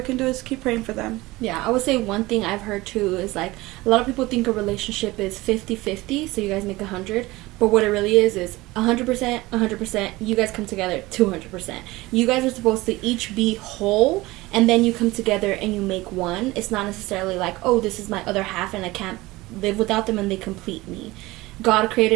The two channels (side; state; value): left; quieter; 20.1 dB